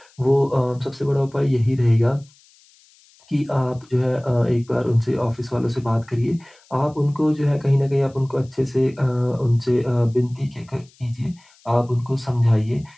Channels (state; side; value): noise; left; hiss, 30 dB below the sound